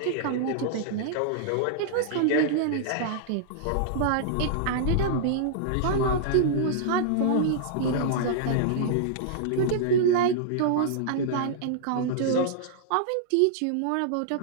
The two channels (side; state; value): both; different; correlation -0.02